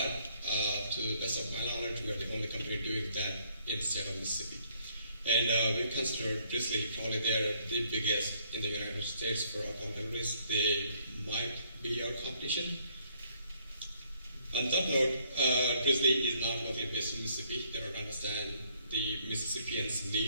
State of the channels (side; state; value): both; inverted; correlation -0.67